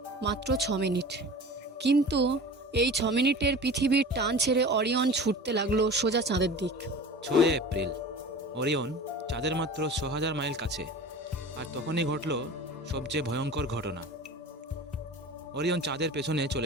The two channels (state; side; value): normal; both; correlation 0.37